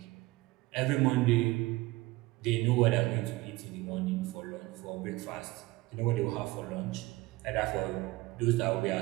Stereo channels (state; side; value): quieter; left; 20.1 dB